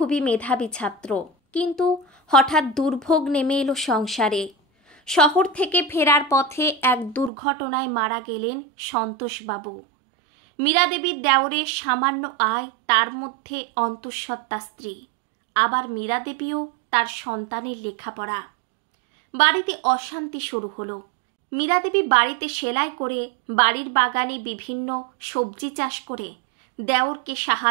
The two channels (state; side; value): drops out; left; at 7.3 s